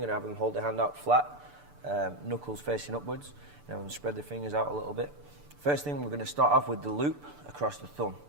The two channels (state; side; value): late; left; 6.9 ms